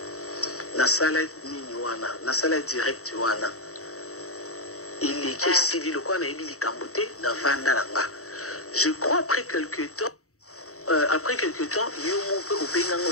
nasala nini wana nasala direct wana eleki esili lokola nayebi likambo te na vanda na nga je crois après quelque temps yo mpe obenganga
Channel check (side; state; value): right; late; 0.64 ms